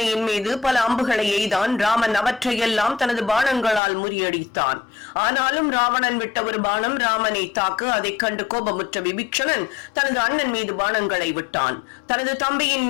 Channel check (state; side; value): drops out; right; at 3.8 s